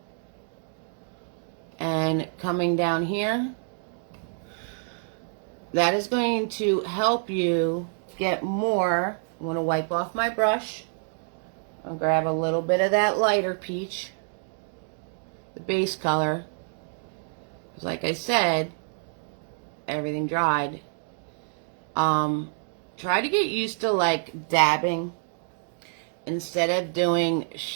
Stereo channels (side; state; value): left; silent; digital silence